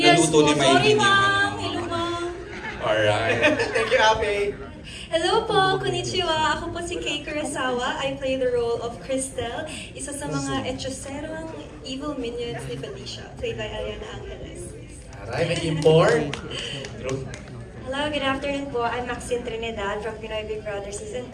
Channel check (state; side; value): identical; both; correlation 1.00